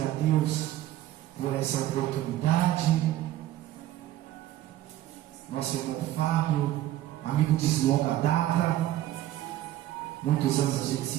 a Deus por essa oportunidade. Nosso irmão Fábio, amigo de longa data, muitos anos a gente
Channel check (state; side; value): quieter; left; 13.8 dB